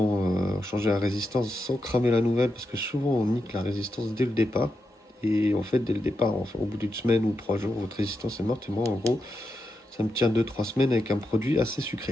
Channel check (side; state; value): both; normal; correlation 0.86